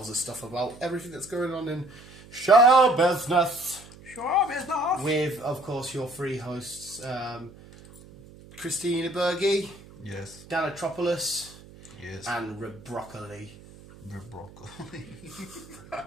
us stuff about everything that's going on in show business. Show business. With, of course, your three hosts, Christina Berge, yes, Dan Atropoulos, yes, and Rebroccoli. Rebroccoli.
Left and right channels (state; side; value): noise; right; hum, 20 dB below the sound